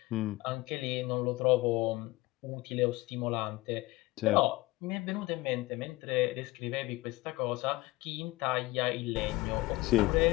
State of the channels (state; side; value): quieter; right; 20.2 dB